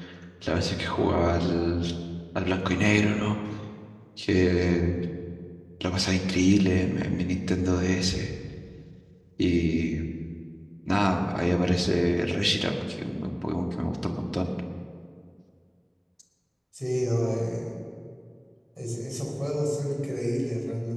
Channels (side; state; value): both; identical; correlation 1.00